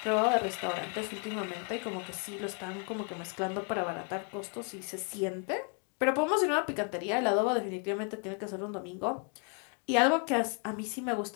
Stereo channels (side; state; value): right; quieter; 37.9 dB